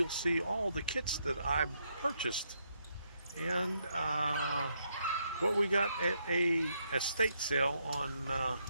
see all the kits that I purchased and what we got at a estate sale on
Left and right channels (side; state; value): both; inverted; correlation -0.77